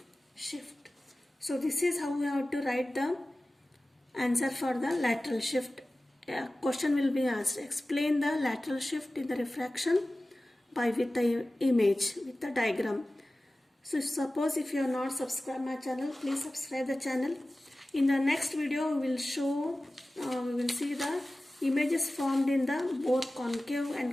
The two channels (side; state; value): both; normal; correlation 0.97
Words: shift. So this is how we have to write the answer for the lateral shift. A question will be asked. Explain the lateral shift in the refraction with the image, with the diagram. So suppose if you are not subscribed my channel, please subscribe the channel. In the next video we will show, we will see the images formed in the both concave